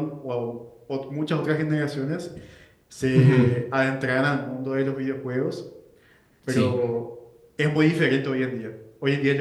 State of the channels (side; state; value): both; identical; correlation 1.00